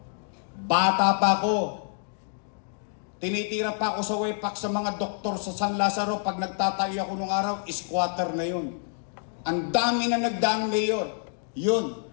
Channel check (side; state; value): right; silent; digital silence